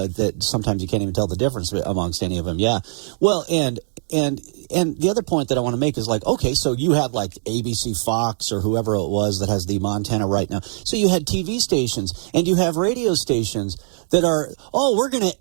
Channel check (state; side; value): silent; left; digital silence